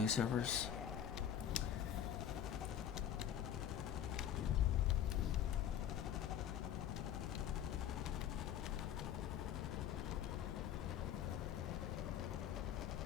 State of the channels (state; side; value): quieter; right; 9.7 dB